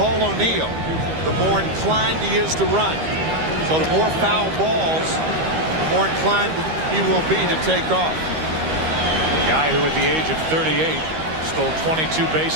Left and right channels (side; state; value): left; late; 13 ms